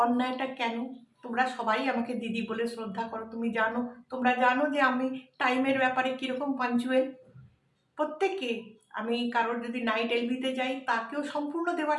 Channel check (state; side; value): identical; both; correlation 1.00